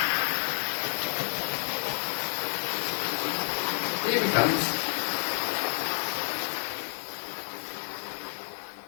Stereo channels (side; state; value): right; silent; digital silence